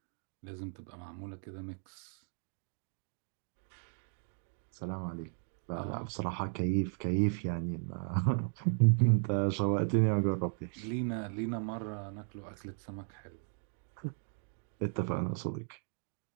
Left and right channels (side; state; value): left; silent; 54 dB below the other